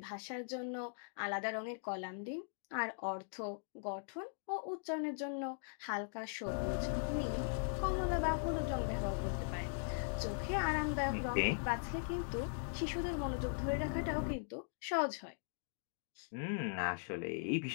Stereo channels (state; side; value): silent; right; digital silence